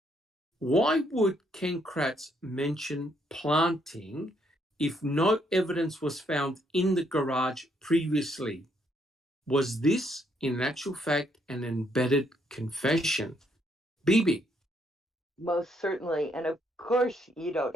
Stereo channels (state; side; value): normal; both; correlation 0.72